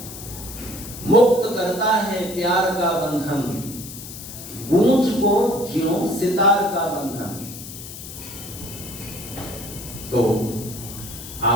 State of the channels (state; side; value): noise; left; hiss, 12 dB below the sound